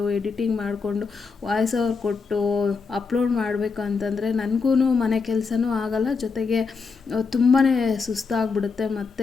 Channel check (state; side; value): quieter; right; 4.9 dB